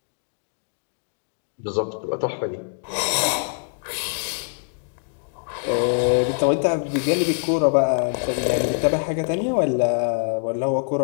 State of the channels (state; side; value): silent; right; digital silence